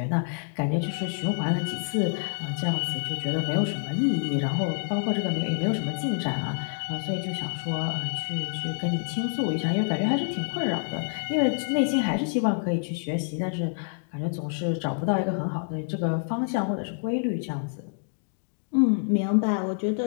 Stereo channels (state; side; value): silent; right; digital silence